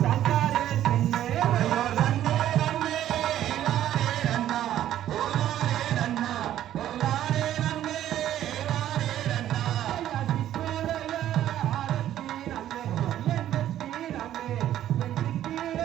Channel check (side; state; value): left; quieter; 12.0 dB